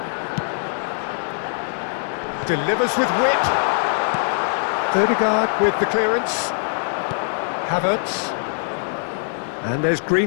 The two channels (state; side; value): silent; right; digital silence